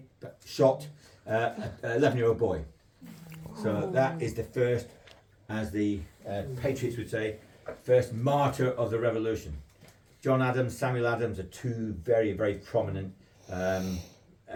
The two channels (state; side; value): identical; both; correlation 1.00